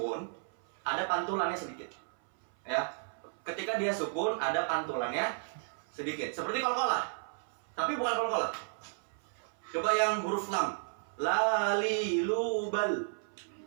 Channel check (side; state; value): left; silent; 55 dB below the other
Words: ada pantulannya sedikit. Ya. Ketika dia sukun ada pantulannya sedikit. Seperti qalqalah. Tapi bukan qalqalah. Coba yang huruf lam. Lali lubal.